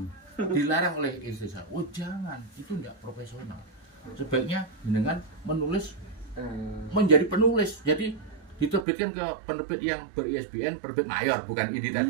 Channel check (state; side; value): drops out; left; at 8.8 s